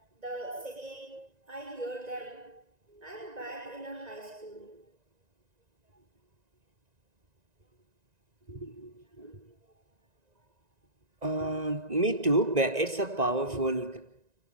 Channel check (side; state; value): left; late; 1.9 ms